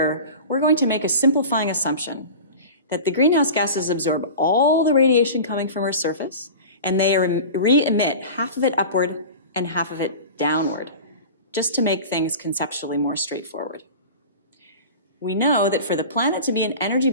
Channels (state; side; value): inverted; both; correlation -0.34